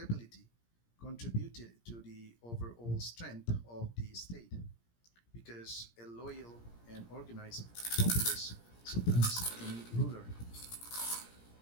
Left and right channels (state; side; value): late; right; 17 ms